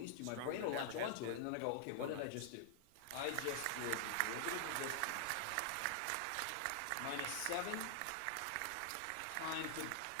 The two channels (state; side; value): different; both; correlation -0.01